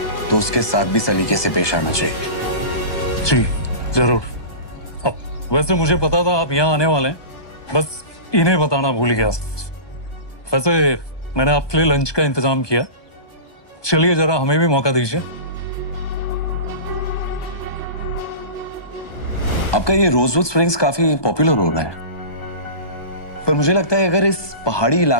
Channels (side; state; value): right; late; 1.2 ms